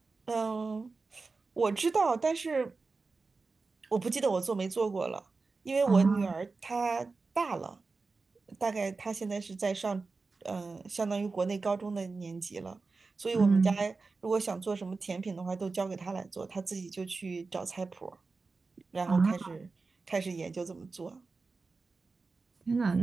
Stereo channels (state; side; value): quieter; left; 4.1 dB